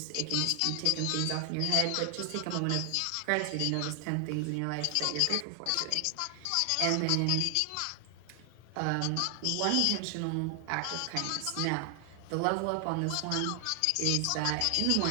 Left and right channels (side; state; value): both; different; correlation 0.00